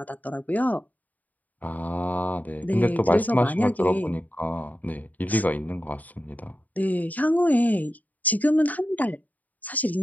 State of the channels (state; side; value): late; right; 0.078 ms